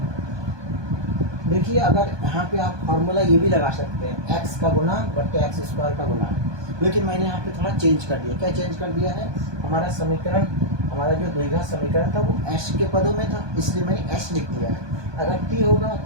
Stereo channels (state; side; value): late; left; 1.2 ms